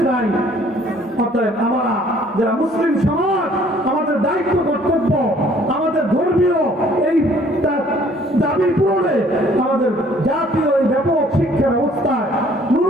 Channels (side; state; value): both; normal; correlation 0.58